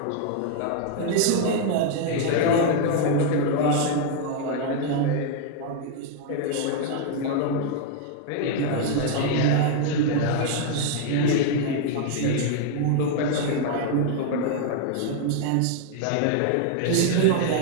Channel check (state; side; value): different; both; correlation 0.00